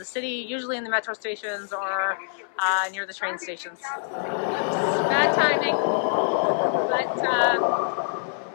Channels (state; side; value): silent; right; 61 dB below the other